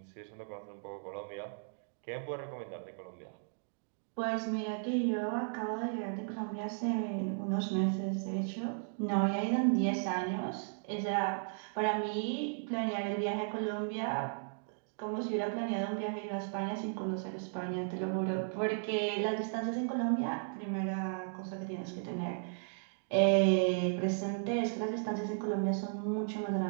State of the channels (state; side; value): silent; left; digital silence